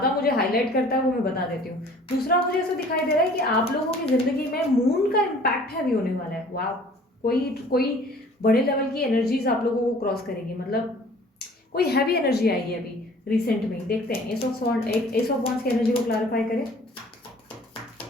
मुझे हाईलाइट करता है वो मैं बता देती हूँ। दूसरा, मुझे ऐसा दिखाई दे रहा है कि आप लोगों की जिंदगी में मून का इम्पैक्ट हैवी होने वाला है। वाह, कोई बड़े लेवल की एनर्जीज आप लोगों को क्रॉस करेगी, मतलब कोई हैवी एनर्जी आएगी अभी रिसेंट में। देखते हैं एस ऑफ वॉन्ड्स की एनर्जी को क्लैरिफाई करें।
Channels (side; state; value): both; normal; correlation 0.51